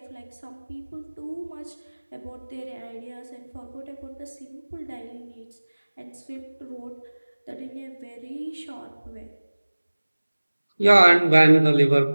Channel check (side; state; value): both; inverted; correlation -1.00